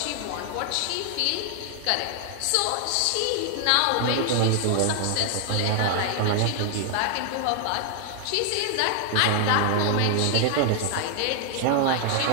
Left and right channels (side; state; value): both; different; correlation 0.00